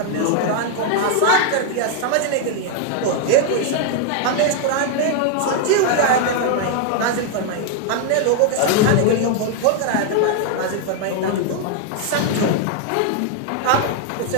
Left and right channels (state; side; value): different; both; correlation 0.00